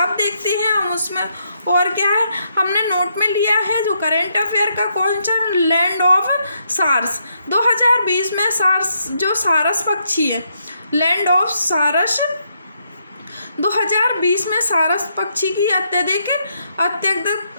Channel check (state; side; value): inverted; both; correlation -0.77